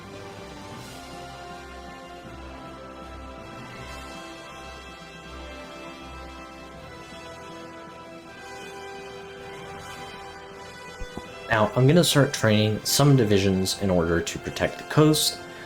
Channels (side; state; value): both; identical; correlation 1.00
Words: Now, I'm going to start training some divisions in order to protect the coast,